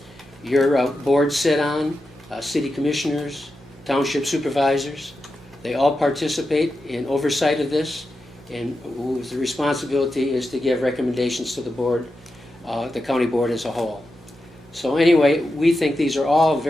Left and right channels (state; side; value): noise; right; hum, 28 dB below the sound